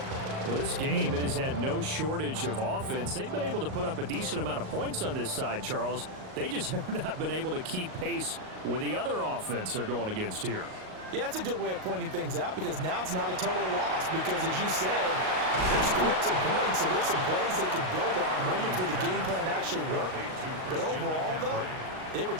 Well, this game, it has had no shortage of offense. They've been able to put up a decent amount of points on this side, Charles. They just have not been able to keep pace with the other offense they're going against here. Yeah, that's a good way of pointing things out because now it's not a total loss because, as you said, they're scoring some points, so there's some plays they can build on, moments where the game plan actually worked. But overall, though, they were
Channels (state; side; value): late; left; 38 ms